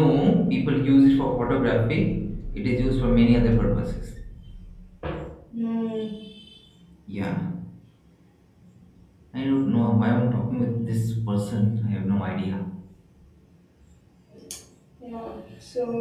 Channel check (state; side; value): identical; both; correlation 1.00